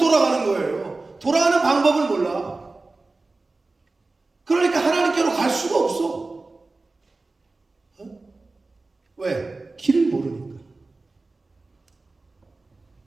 거예요. 돌아가는 방법을 몰라. 그러니까 하나님께로 갈 수가 없어. 왜? 길을 모르니까.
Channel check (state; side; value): quieter; left; 3.4 dB